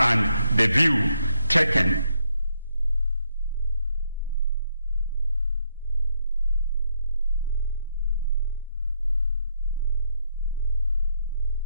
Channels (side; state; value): both; inverted; correlation -0.74